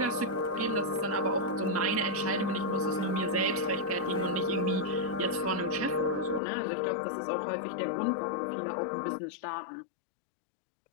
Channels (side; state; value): right; drops out; at 6.4 s